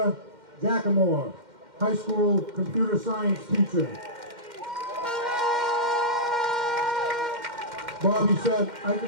Jackamore, high school computer science teacher. Bobby said, I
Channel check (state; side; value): late; left; 2.1 ms